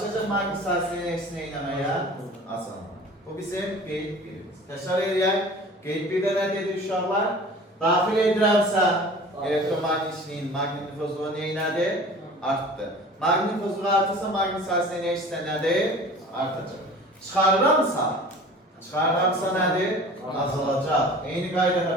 maqnit sahəsinin eksi neynəməyə? Asılma. Bu bizim qeyd birimiz. Təkrar edək. Qeyd birdə nə dedik uşaqlar? Daxil edirəmsə elektromagnitçiliyin magnitofozluğu neynədir? Artdı. Magnitofozluğu artırsa maqnit sahəsinin eksi nədir? Artacaq. Çıxarıramsa nədir? Azalacaq. Eyni qaydada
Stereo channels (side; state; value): both; normal; correlation 0.42